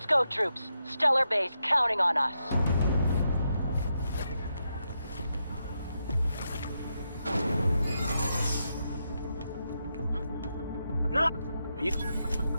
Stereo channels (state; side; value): inverted; both; correlation -0.84